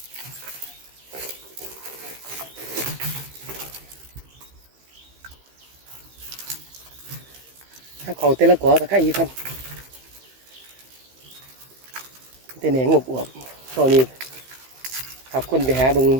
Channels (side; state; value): left; late; 15 ms